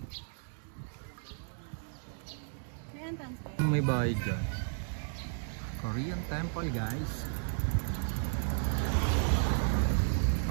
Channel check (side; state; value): left; silent; 55 dB below the other